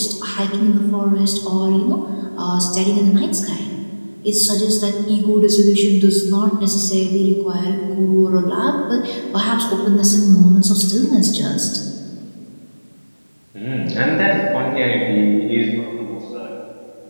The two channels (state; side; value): inverted; both; correlation -1.00